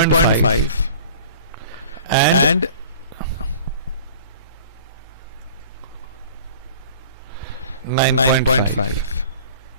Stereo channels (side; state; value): both; inverted; correlation -0.45